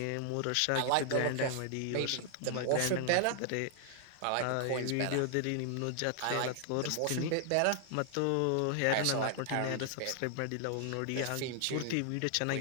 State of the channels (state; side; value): different; both; correlation 0.00